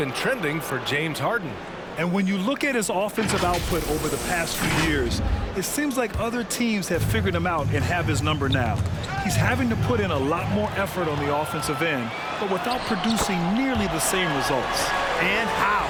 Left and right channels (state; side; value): identical; both; correlation 1.00